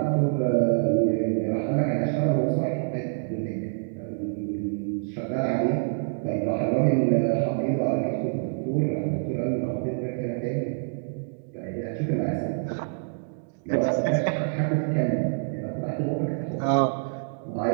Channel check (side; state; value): left; silent; digital silence